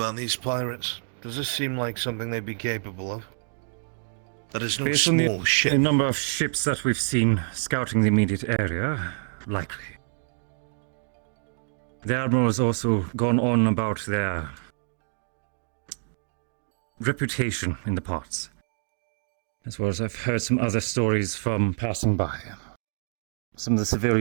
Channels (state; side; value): silent; left; digital silence